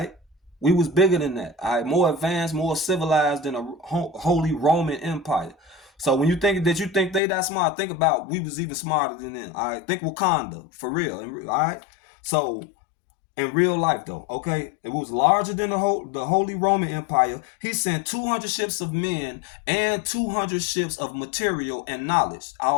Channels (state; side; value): drops out; right; at 7.2 s